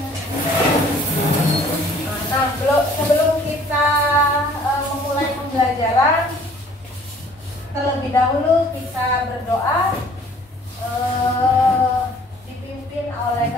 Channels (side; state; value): both; normal; correlation 0.55